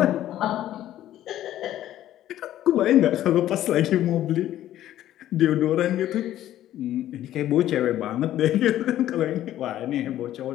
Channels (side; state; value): right; quieter; 12.8 dB